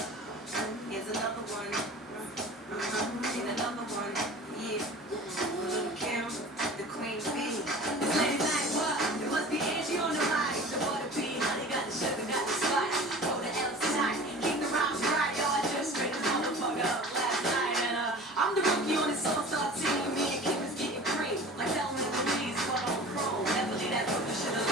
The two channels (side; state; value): both; normal; correlation 0.40